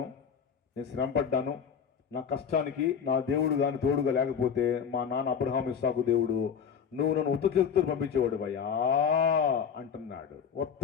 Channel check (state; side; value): quieter; right; 7.1 dB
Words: నేను శ్రమపడ్డాను, నా కష్టానికి నా దేవుడు కానీ తోడుగా లేకపోతే మా నాన్న అబ్రహాము, ఇస్సాకు దేవుడు నువ్వు నన్ను ఉత్త చేతులతో పంపించేవాడు భయ్యా అంటున్నాడు. ఉత్త